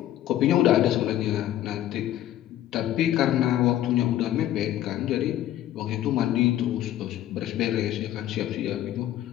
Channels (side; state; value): right; quieter; 12.7 dB